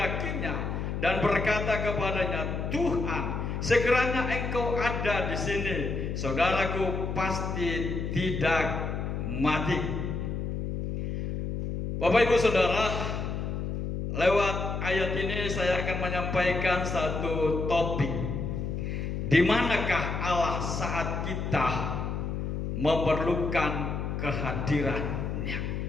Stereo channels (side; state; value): left; noise; hum, 3 dB below the sound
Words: dan berkata kepadanya, Tuhan, sekiranya Engkau ada di sini, saudaraku pasti tidak mati. Bapak Ibu Saudara, lewat ayat ini saya akan menyampaikan satu topik. Di manakah Allah saat kita memerlukan kehadirannya?